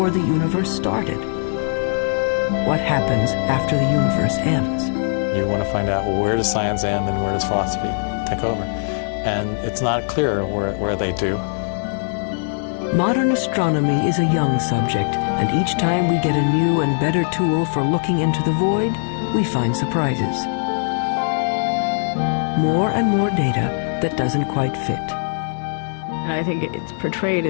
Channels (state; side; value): silent; right; 58 dB below the other